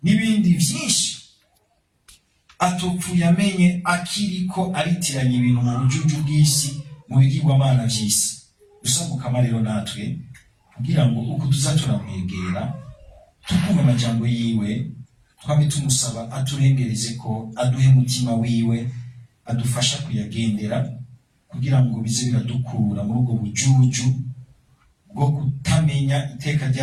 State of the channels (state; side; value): identical; both; correlation 1.00